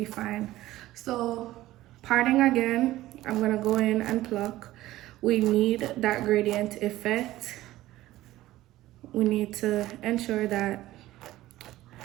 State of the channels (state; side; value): quieter; left; 15.9 dB